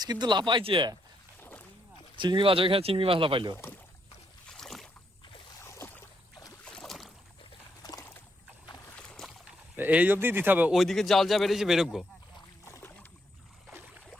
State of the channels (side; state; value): both; normal; correlation 0.77